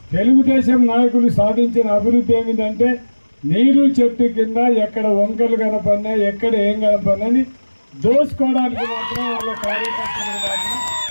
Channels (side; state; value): both; inverted; correlation -1.00